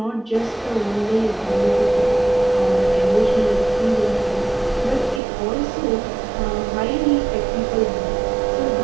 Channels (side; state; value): left; drops out; at 5.2 s